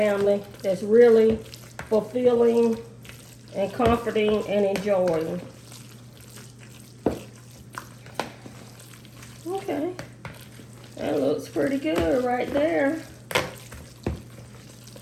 that's really fulfilling and comforting and enjoying. Okay. That looks pretty good right there. I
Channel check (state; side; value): identical; both; correlation 1.00